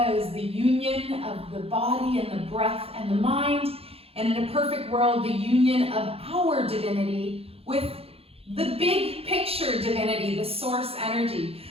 is the union of the body and the breath and the mind. And in a perfect world, the union of our divinity with the big picture divinity, the source energy.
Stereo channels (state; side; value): late; left; 0.28 ms